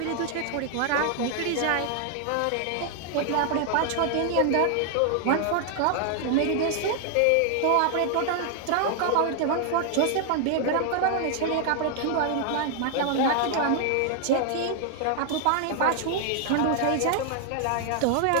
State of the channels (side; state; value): both; different; correlation 0.00